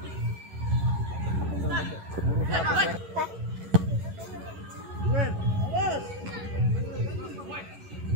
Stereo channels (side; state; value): left; late; 11 ms